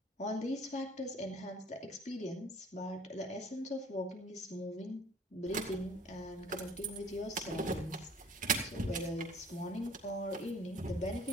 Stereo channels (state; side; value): normal; both; correlation 0.52